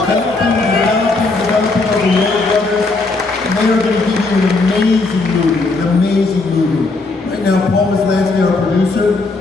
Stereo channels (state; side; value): quieter; right; 3.5 dB